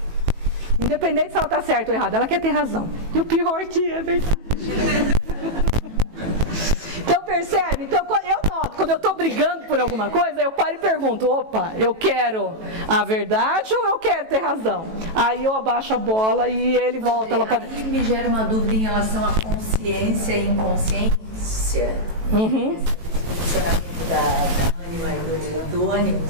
Independente se ela está certa ou errada, ela quer ter razão. E o pior é que é verdade. Então, Então, percebe? Então, eu noto, quando eu estou brigando por alguma coisa, eu paro e pergunto, opa, eu quero a verdade ou eu quero ter razão? Aí eu abaixo a bola e ele volta lá para... Aí me gera uma dúvida em relação à consciência e inconsciência. Esse posicionamento da ânima e do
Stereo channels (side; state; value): left; late; 18 ms